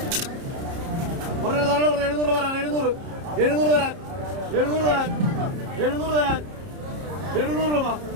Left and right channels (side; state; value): left; late; 30 ms